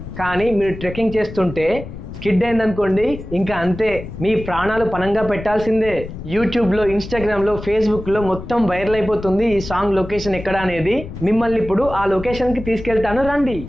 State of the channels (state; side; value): noise; left; rumble, 12 dB below the sound